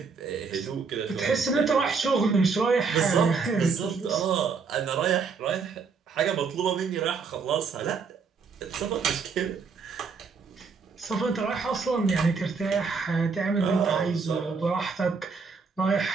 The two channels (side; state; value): left; quieter; 5.1 dB